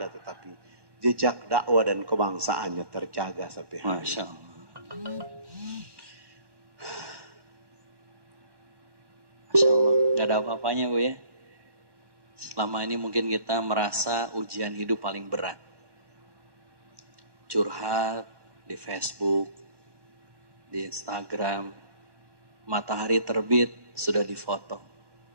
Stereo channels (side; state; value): left; late; 1.1 ms